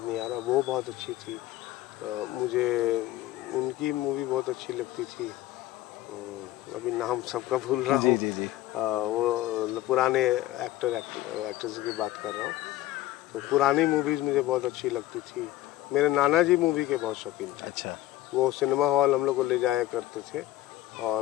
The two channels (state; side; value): quieter; right; 15.3 dB